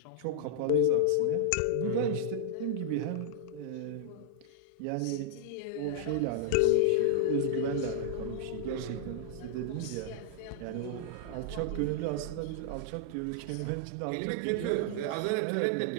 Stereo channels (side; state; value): both; different; correlation -0.01